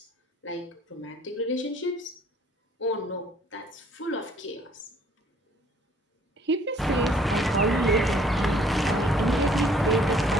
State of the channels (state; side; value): normal; both; correlation 0.59